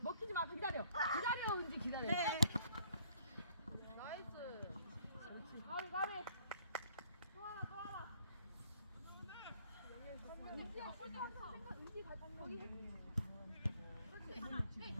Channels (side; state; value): both; inverted; correlation -0.61